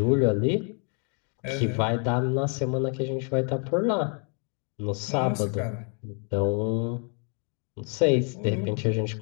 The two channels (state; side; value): quieter; right; 39.6 dB